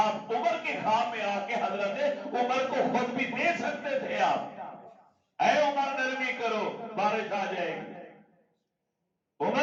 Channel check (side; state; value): both; identical; correlation 1.00